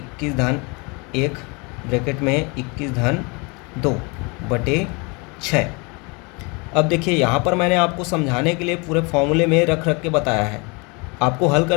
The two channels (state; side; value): quieter; right; 29.7 dB